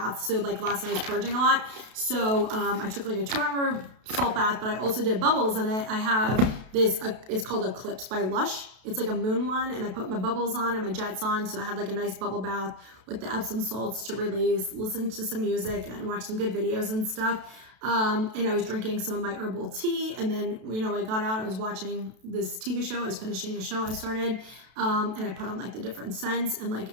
So like last night I was purging a lot. So I took like a 2-hour salt bath, but I also did bubbles in it. I have this, it's called Eclipse by Lush. It's like a moon one, and I put my bubbles on and my jets on. So I had like a nice bubble bath with the Epsom salts to release, listen to some music and watch some good videos and stuff. And I was drinking some of my herbal tea, and then, you know, I got out, I was watching this TV show, I was finishing a show I started, and I put on like the different scents, and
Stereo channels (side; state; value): left; late; 32 ms